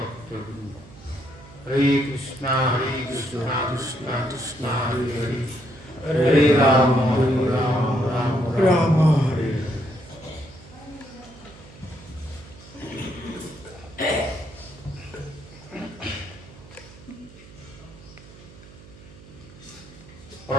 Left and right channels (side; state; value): right; noise; hum, 20 dB below the sound